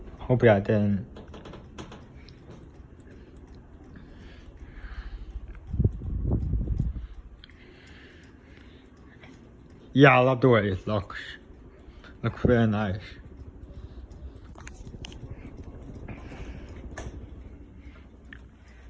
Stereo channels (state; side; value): identical; both; correlation 1.00